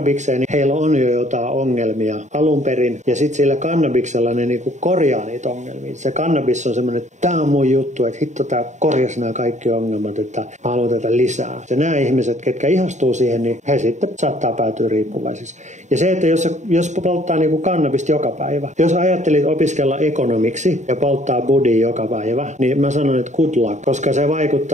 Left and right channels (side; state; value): left; late; 0.34 ms